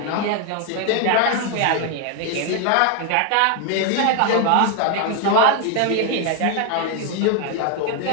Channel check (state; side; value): different; both; correlation 0.01